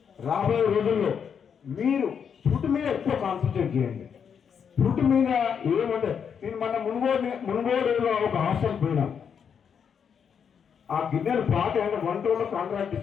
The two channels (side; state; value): right; quieter; 7.2 dB